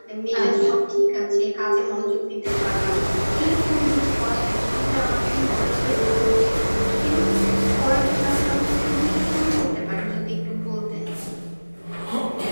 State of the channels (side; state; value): both; inverted; correlation -1.00